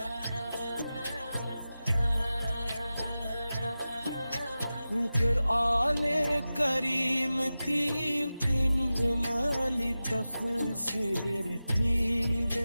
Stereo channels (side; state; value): both; inverted; correlation -0.95